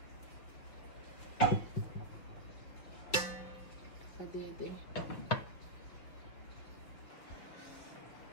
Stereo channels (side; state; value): right; late; 6.1 ms